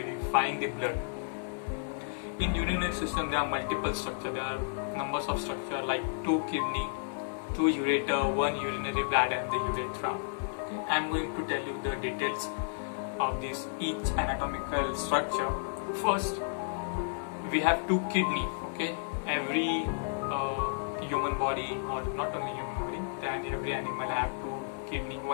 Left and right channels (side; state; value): right; silent; digital silence